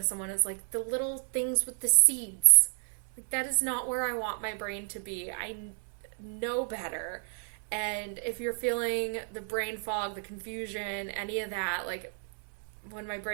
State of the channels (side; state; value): left; silent; 55 dB below the other